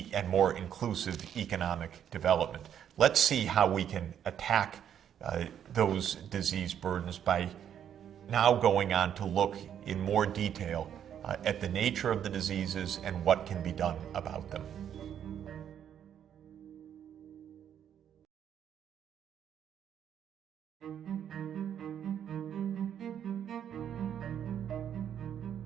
and more inclusive economic development. Let's see how we can attack those disease burdens by now going on to look in more detail at the nature of the diseases and what can be done about them.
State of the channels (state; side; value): quieter; left; 9.3 dB